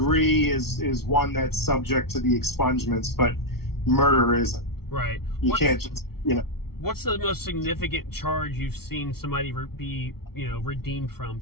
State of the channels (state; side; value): late; right; 0.94 ms